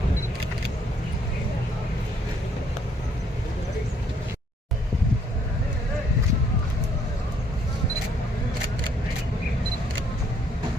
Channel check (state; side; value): normal; both; correlation 0.67